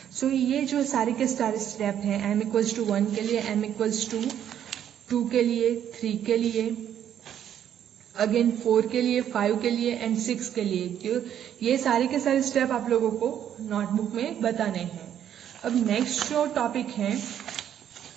सो ये जो सारे के सारे स्टेप हैं, m इक्वल्स टू 1 के लिए, m इक्वल्स टू 2 के लिए, 3 के लिए, अगेन 4 के लिए, 5 के लिए एंड 6 के लिए, जो ये सारे के सारे स्टेप आप लोगों को नोटबुक में बताने हैं। अब नेक्स्ट जो टॉपिक है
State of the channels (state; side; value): quieter; left; 10.0 dB